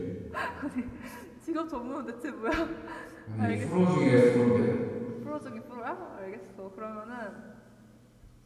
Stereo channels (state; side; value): identical; both; correlation 1.00